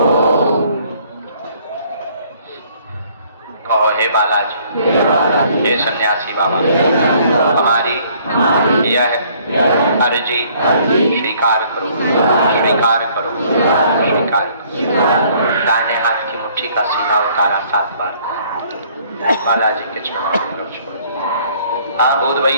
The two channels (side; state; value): both; inverted; correlation -0.61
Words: कहो हे बालाजी, हे सन्यासी बाबा, हमारी यह अर्जी स्वीकार करो, स्वीकार करो, स्वीकार करो। दाहिने हाथ की मुट्ठी का सीधा उतारा 7 बार बालाजी के चरणों में छोड़। हाँ भूत